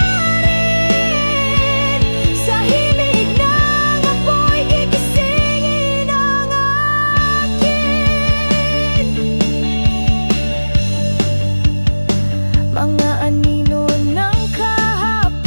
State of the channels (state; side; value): inverted; both; correlation -1.00